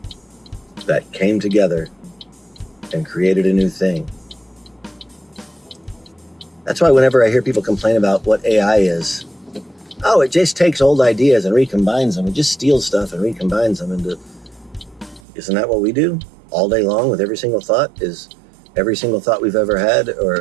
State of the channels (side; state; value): left; drops out; at 15.2 s